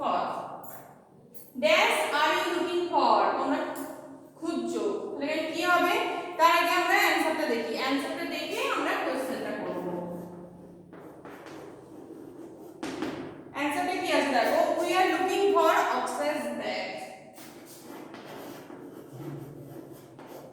dash are you looking for, তোমরা খুঁজছো। তাহলে কি হবে? তার আগে আমরা অ্যানসারটা দেখি, অ্যানসারটা দেখে আমরা কোশ্চেনটা করব। অ্যানসারটা কি আছে দেখো, we are looking for Akshay's bag.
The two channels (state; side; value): identical; both; correlation 1.00